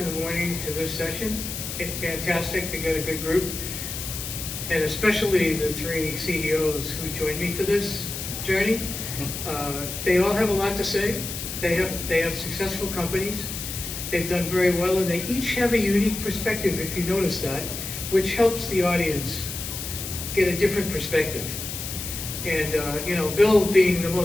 the morning to this session. Fantastic to get a good group. And especially the 3 CEOs who joined me for this journey. They all have a lot to say. They have successful companies. They've done very well, and they each have a unique perspective, if you notice that, which helps the audience get a different perspective. And you know, Bill, being the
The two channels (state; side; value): noise; left; hiss, 6 dB below the sound